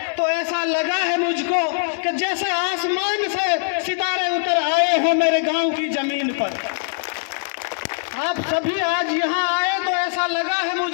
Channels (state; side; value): silent; right; 64 dB below the other